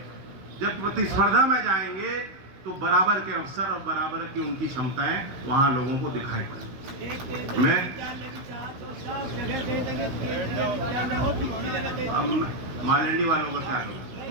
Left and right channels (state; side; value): late; left; 16 ms